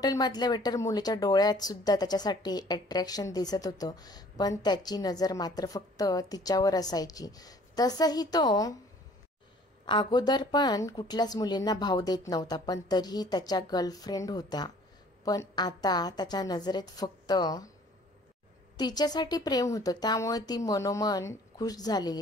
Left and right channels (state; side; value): normal; both; correlation 0.54